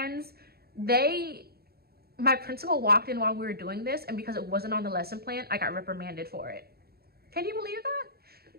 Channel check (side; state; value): left; late; 0.45 ms